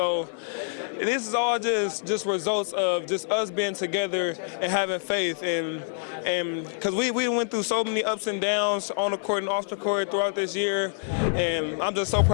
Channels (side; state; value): right; silent; digital silence